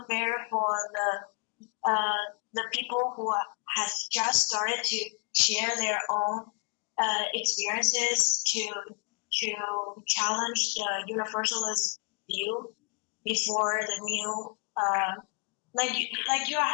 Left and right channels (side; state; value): right; quieter; 39.3 dB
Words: for the people who has just started to share their own experiences to challenge the Universalist view before the new